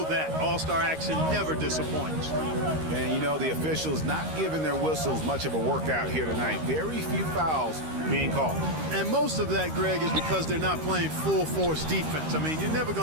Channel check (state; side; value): late; left; 13 ms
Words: that. All-Star action never disappoints. And you know, the officials not giving their whistles much of a workout here tonight. Very few fouls being called. And most of that, Greg, is because they're not playing full-force defense. I mean, you're never